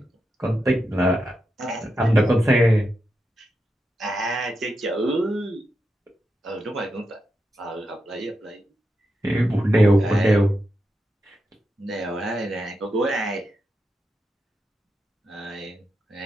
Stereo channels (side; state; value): both; normal; correlation 0.87